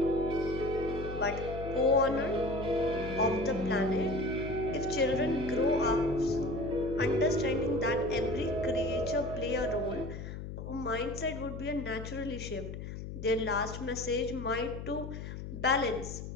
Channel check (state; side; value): noise; left; hum, 8 dB below the sound